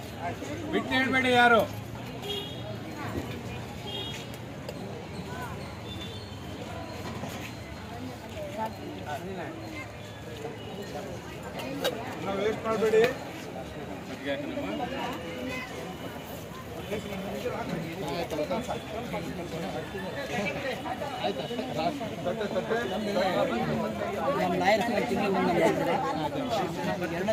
ಬಿಟ್ಟು ಹೇಳ್ಬೇಡಿ ಯಾರು ವೇಸ್ಟ್ ಮಾಡಬೇಡಿ. ನಮ್ಮ ಲಾಯರ್ಸ್ ತಿಂಗಳು ಬಂದಿದ್ದಾರೆ. 2ನೇ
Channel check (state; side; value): identical; both; correlation 1.00